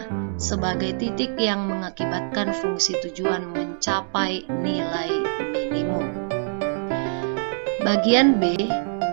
sebagai titik yang mengakibatkan fungsi tujuan mencapai nilai minimum. Bagian B,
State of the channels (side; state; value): left; silent; digital silence